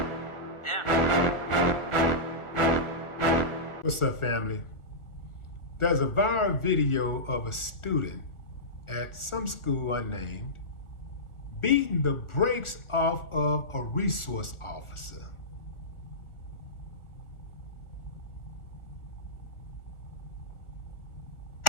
What's up, family? There's a viral video of a student at some school unnamed beating the brakes off of a resource officer.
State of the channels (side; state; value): right; late; 1.5 ms